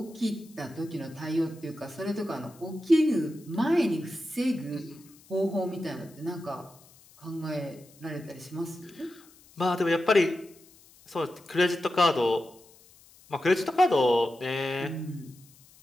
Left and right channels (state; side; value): noise; left; hiss, 26 dB below the sound